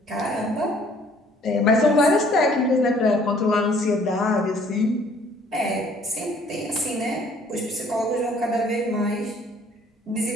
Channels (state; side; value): normal; both; correlation 0.58